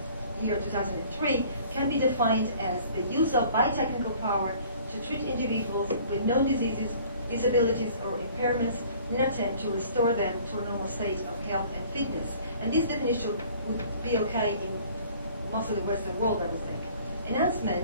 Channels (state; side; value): inverted; both; correlation -0.52